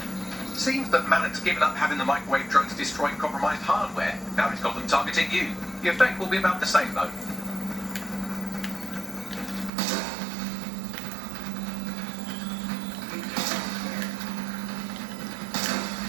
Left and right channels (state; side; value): drops out; left; at 9.7 s